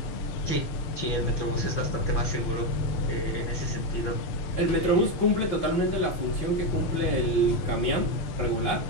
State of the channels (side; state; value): right; late; 5.9 ms